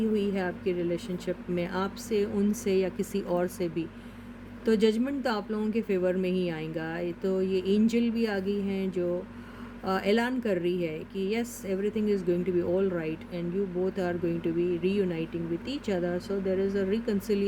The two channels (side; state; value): both; identical; correlation 1.00